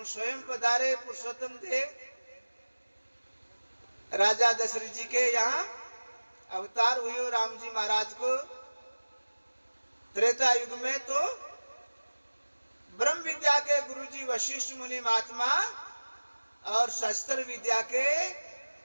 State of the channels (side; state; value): both; inverted; correlation -1.00